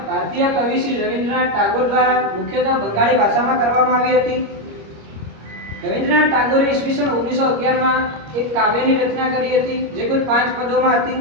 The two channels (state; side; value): late; left; 25 ms